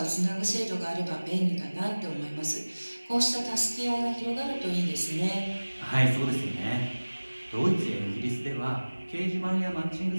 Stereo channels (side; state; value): both; inverted; correlation -1.00